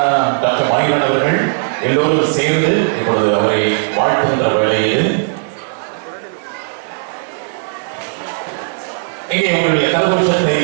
டாக்டர் மயூரன் அவர்கள் எல்லோரும் சேர்ந்து இப்பொழுது அவரை வாழ்த்துகின்ற வேளையில் இங்கே உங்களுடைய கரகோஷத்தை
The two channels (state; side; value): silent; left; digital silence